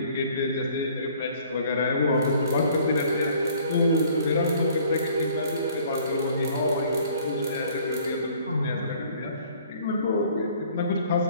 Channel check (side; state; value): both; inverted; correlation -0.56